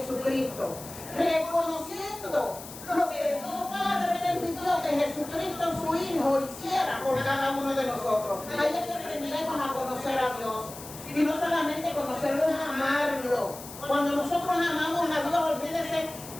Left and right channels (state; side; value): noise; left; hiss, 14 dB below the sound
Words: reconociendo lo que Dios Padre permitió que Jesucristo su Hijo hiciera por cada uno de nosotros. Ahí es que aprendemos a conocer a Dios. Y no solamente conocerlo, es amarlo. Cuando nosotros amamos a Dios, olvídese,